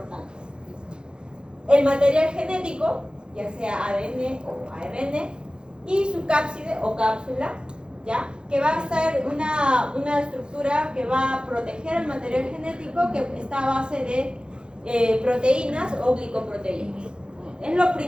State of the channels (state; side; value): late; left; 0.050 ms